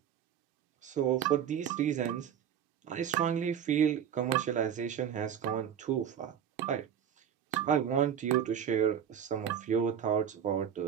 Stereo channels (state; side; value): quieter; left; 8.9 dB